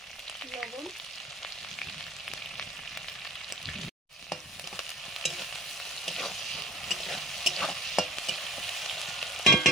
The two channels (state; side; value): normal; both; correlation 0.36